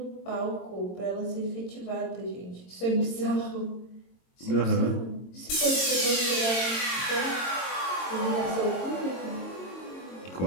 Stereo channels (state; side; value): late; right; 22 ms